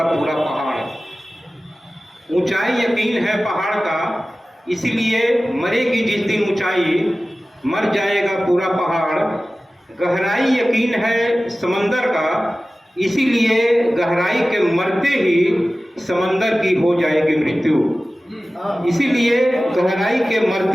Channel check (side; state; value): both; normal; correlation 0.96